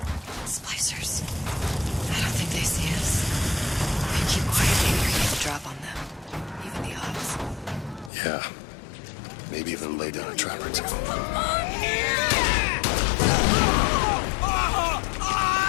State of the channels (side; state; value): right; drops out; at 8.1 s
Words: Splicers. I don't think they see us. If you keep quiet, maybe you're going to drop on them. Even the odds. Yeah. Maybe even lay down a trap or two.